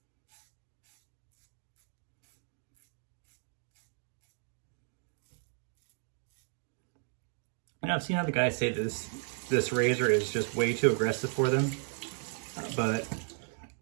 And I've seen other guys say this razor is just way too aggressive for them, but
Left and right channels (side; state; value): left; silent; 55 dB below the other